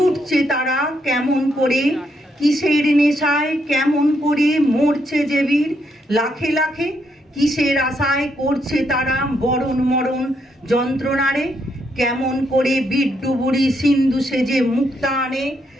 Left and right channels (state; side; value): normal; both; correlation 0.77